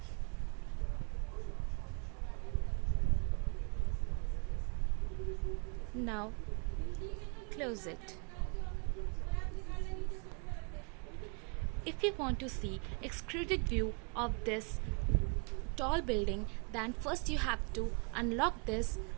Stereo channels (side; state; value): left; quieter; 38.3 dB